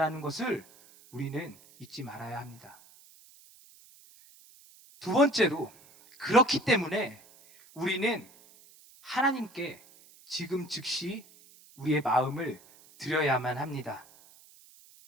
것을 우리는 잊지 말아야 합니다. 두 번째로, 그렇기 때문에 우리는 하나님께 지금 즉시 우리의 마음을 드려야만 합니다.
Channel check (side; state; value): right; noise; hiss, 25 dB below the sound